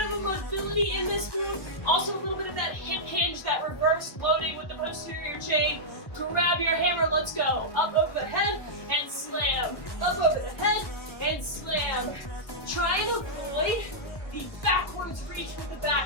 of a mobility in this move. Also a little bit of that hip hinge, that reverse loading with the posterior chain. Grab your hammer, let's go. Up over the head and slam. Up over the head and slam. Try and avoid the backwards reach with the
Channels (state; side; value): late; right; 1.2 ms